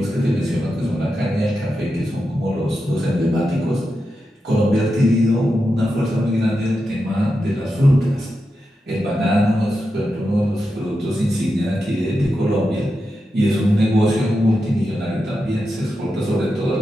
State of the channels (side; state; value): both; normal; correlation 0.88